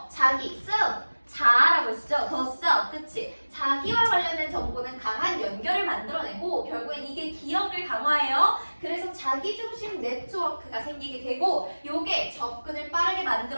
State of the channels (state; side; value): inverted; both; correlation -1.00